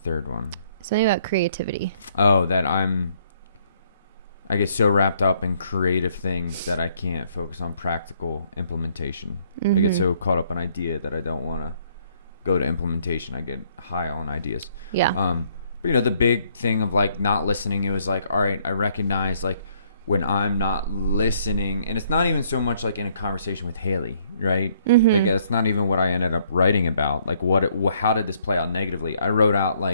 one? Something about creativity. Oh, that I get so wrapped up in creative things that I can't focus on practical implementation. I get so caught up in idea that I don't want to go to implementation. I get high on ideas. Yeah. But, you know, the big thing of, like, not listening, it was like, all right, I recognize, like, when I'm not listening, and it's not even so much, like, in a conversation with Hailey, right? Like, it's not even what I ended up writing about. Like, how did this play out negatively? I wrote out,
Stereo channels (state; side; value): inverted; both; correlation -0.66